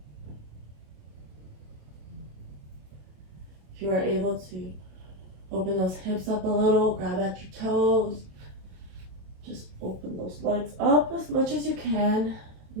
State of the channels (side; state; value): left; late; 27 ms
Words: If you are able to open those hips up a little, grab at your toes. Just open those legs up as much as you can